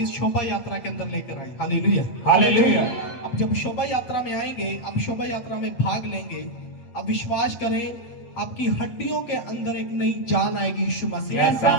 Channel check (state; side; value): late; right; 8.6 ms